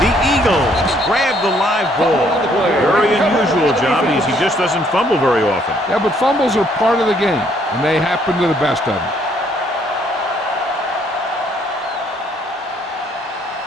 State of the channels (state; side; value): normal; both; correlation 0.66